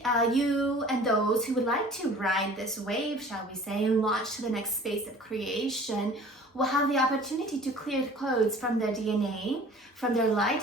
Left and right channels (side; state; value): both; normal; correlation 0.47